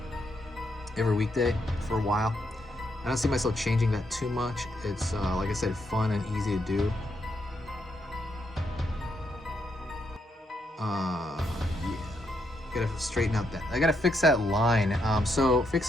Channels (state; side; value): normal; both; correlation 0.78